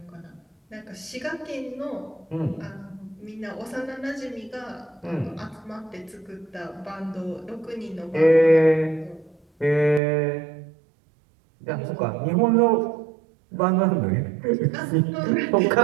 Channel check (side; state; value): left; drops out; at 10.0 s